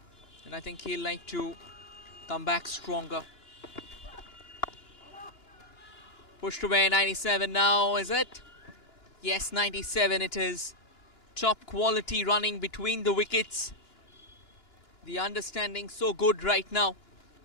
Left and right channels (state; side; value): late; right; 2.9 ms